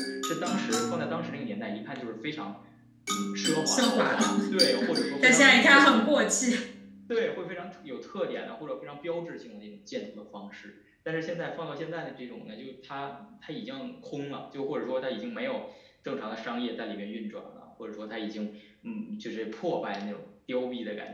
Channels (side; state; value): both; identical; correlation 1.00